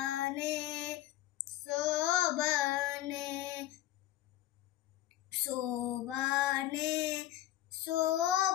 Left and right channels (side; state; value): right; quieter; 14.0 dB